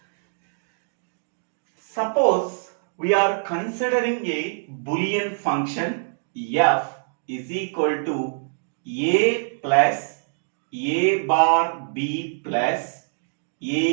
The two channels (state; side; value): silent; left; digital silence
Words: Suppose we are considering a Boolean function f is equal to a plus a bar b plus